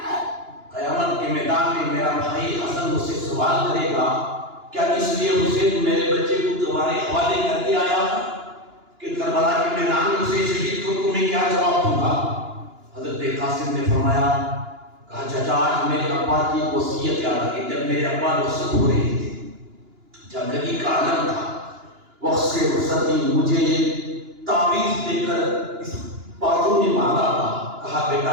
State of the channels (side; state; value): left; late; 2.9 ms